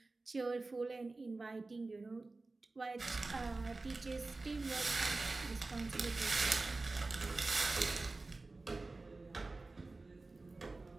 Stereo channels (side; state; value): left; quieter; 3.4 dB